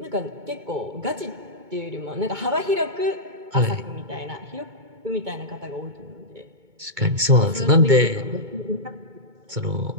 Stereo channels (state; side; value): late; left; 2.2 ms